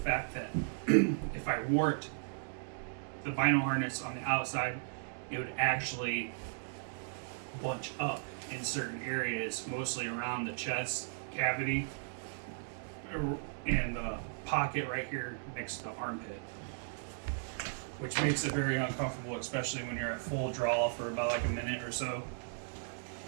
that if I wore it, the bino harness on the outside, it would actually bunch up in certain areas, mostly around the chest cavity and the pocket right here next to the armpit, which makes it very uncomfortable, especially when you're at full draw for about like a minute or so.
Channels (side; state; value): left; silent; digital silence